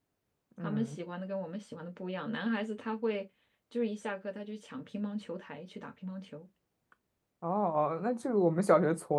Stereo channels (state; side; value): identical; both; correlation 1.00